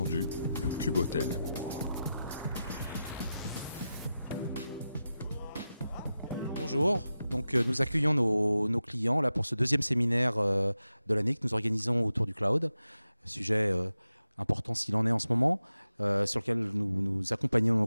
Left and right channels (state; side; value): inverted; both; correlation -0.91